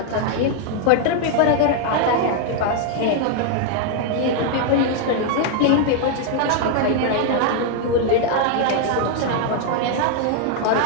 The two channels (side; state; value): both; different; correlation 0.00